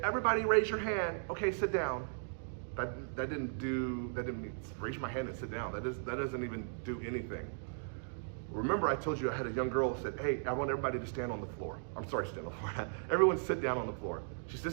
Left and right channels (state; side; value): silent; left; digital silence